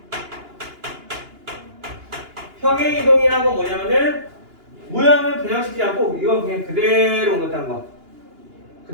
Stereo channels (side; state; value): left; late; 2.9 ms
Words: 평행 이동이라는 건 뭐냐면은 모양을 변형시키지 않고 이건 그냥 그대로 옮겼다는 거.